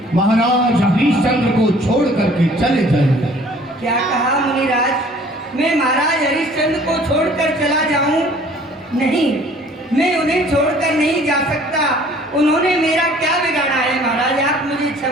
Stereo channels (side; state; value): both; normal; correlation 0.54